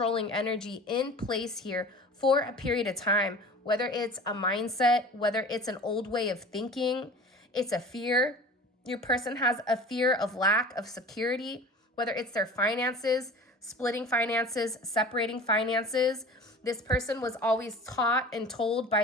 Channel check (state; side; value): normal; both; correlation 0.39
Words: energy in place here for a period of time, whether it's a mindset, whether it's an old way of thinking, it's a fear. Your person has a fear of lack of security, whether it's their finances, splitting finances, separating finances. This person was always taught and told